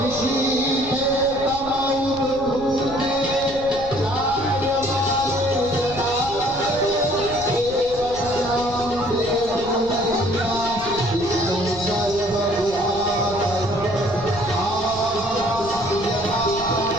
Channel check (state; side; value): noise; left; rumble, 15 dB below the sound